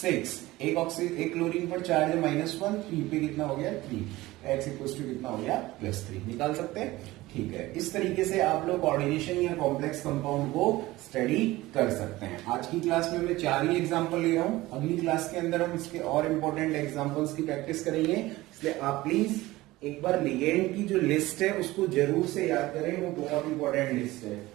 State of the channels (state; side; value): quieter; left; 18.5 dB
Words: एक क्लोरीन पर चार्ज है -1, 3 पे कितना हो गया 3, x इक्वल टू कितना हो गया +3, निकाल सकते हैं। ठीक है, इस तरीके से आप लोग कोऑर्डिनेशन या कॉम्प्लेक्स कंपाउंड को स्टडी कर सकते हैं। आज की क्लास में मैं 4 ही एग्जांपल ले रहा हूं, अगली क्लास के अंदर हम इसके और इंपॉर्टेंट एग्जांपल्स की प्रैक्टिस करेंगे, इसलिए आप प्लीज एक बार लिगेंड की जो लिस्ट है उसको जरूर से याद करें, वो बहुत इंपॉर्टेंट लिस्ट है।